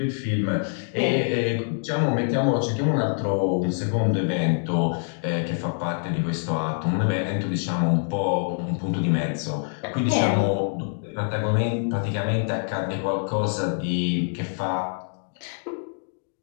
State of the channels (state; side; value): silent; right; 61 dB below the other